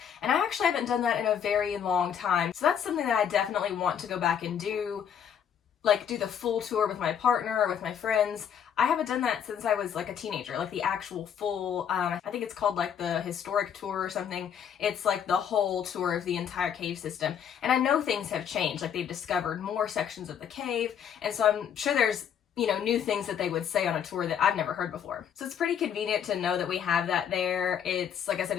and I actually haven't done that in a very long time. So that's something that I definitely want to go back and do, like do the full tour with my partner or with my friends. I haven't done that since I was like a teenager, like the actual full, I think it's called like the historic tour or something. It's like the whole tour of the entire cave system. And I know things have changed, like they've discovered more sections of the cave. And so I'm sure there's, new things that they would say on a tour that I've never heard before. So it's pretty convenient to know that we have that there. It's, like I said,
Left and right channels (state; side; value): quieter; right; 8.4 dB